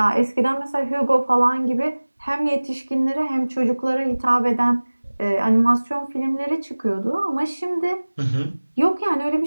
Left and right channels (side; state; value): both; inverted; correlation -1.00